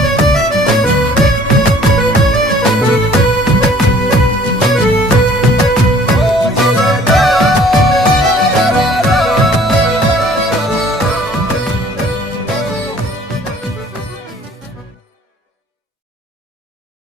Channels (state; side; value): normal; both; correlation 0.54